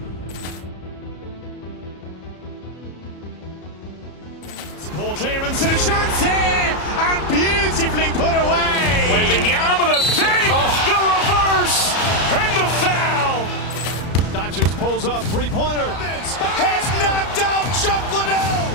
Poor clearance and a chance here, and beautifully put away. Wembanyama the fake, the reverse, and the foul. Doncic pulls up, three-pointer. Has knocked out Chuck Liddell.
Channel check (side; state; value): right; late; 34 ms